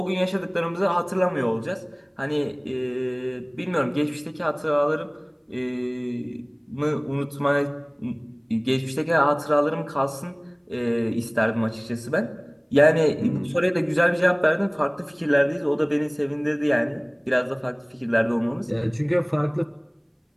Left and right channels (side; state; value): both; identical; correlation 1.00